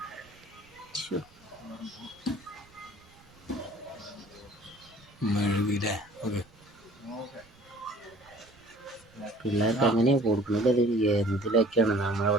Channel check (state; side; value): noise; right; rumble, 27 dB below the sound